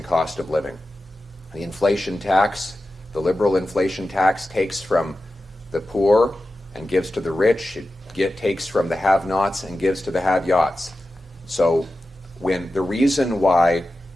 cost of living. The inflation tax, the liberal inflation tax, takes from the poor and gives to the rich. It takes from the have-nots and gives to the have-yachts. So when the reason why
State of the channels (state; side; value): normal; both; correlation 0.93